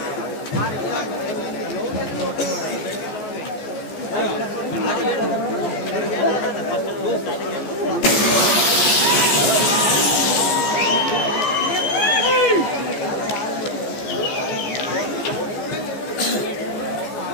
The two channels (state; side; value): late; right; 14 ms